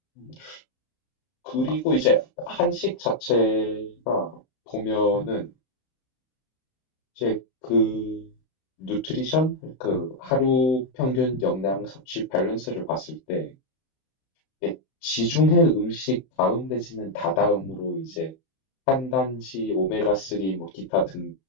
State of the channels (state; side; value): late; right; 31 ms